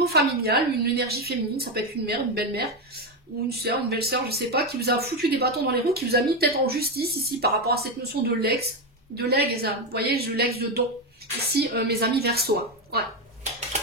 familial, une énergie féminine, ça peut être une mère, une belle-mère, ou une sœur, une belle-sœur, je sais pas, qui vous a foutu des bâtons dans les roues, qui vous a mis peut-être en justice ici par rapport à cette notion de legs, vous voyez, je legs de don. Ici, mes amis Verseaux, hein. Ouais.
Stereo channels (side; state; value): both; normal; correlation 0.10